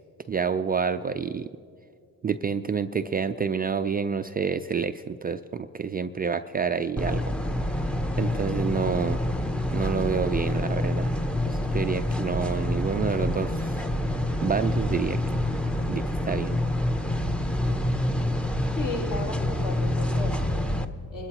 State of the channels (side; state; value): both; normal; correlation 0.64